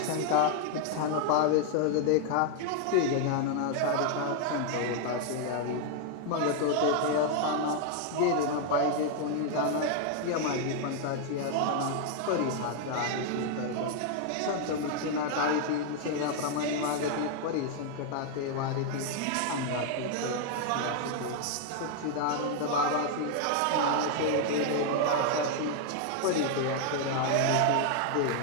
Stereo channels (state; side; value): different; both; correlation 0.00